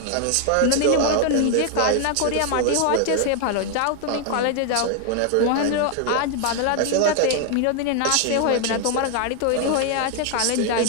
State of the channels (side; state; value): both; different; correlation 0.00